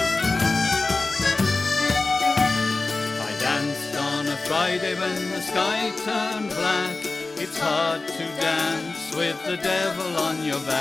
I danced on a Friday when the sky turned black. It's hard to dance with the devil on your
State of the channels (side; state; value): right; quieter; 3.5 dB